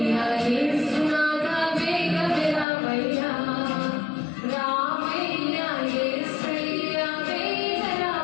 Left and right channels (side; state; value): right; drops out; at 2.7 s